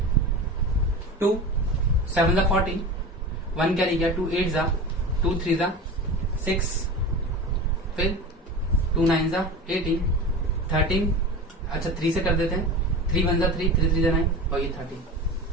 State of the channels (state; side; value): normal; both; correlation 0.31